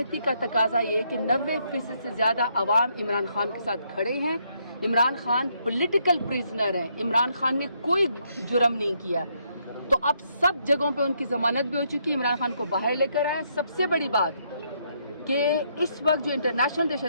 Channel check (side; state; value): both; inverted; correlation -0.74